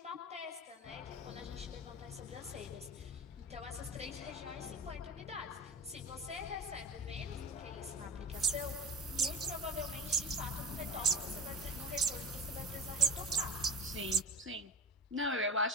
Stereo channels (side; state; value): both; normal; correlation 0.32